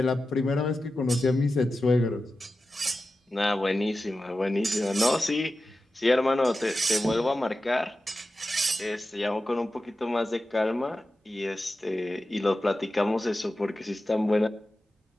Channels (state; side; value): normal; both; correlation 0.93